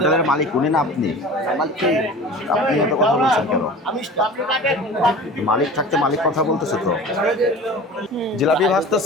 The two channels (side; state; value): both; normal; correlation 0.39